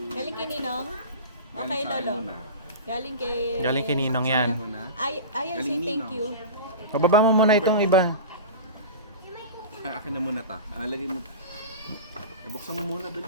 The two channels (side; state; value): both; inverted; correlation -0.31